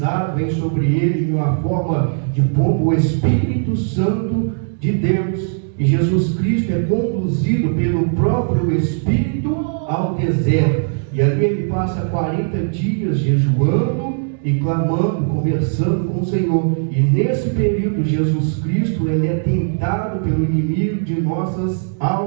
vem sobre ele em uma forma de pombo o Espírito Santo de Deus. E Jesus Cristo é conduzido pelo próprio Espírito ao deserto. E ali ele passa 40 dias jejuando e clamando, conversando com o Senhor. E nesse período, Jesus Cristo, ele é tentado pelo inimigo de nossas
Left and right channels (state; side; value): silent; left; digital silence